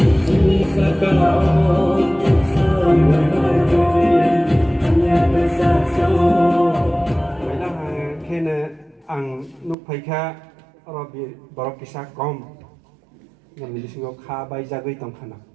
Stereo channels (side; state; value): left; drops out; at 9.8 s